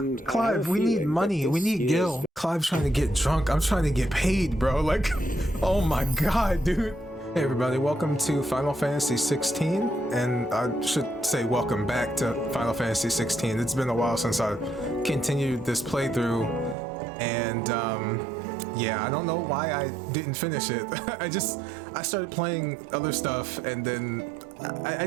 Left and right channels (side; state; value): left; drops out; at 16.8 s